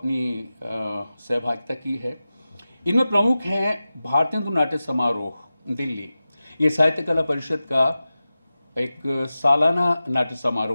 सहभागिता की है। इनमें प्रमुख हैं भारतीय नाट्य समारोह दिल्ली, ये साहित्य कला परिषद का एक सालाना नाट्य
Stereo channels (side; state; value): both; inverted; correlation -0.95